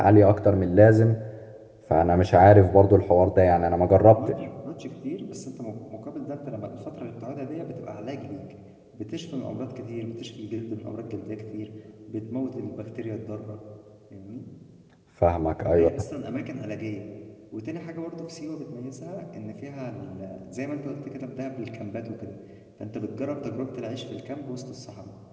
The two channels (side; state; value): both; identical; correlation 1.00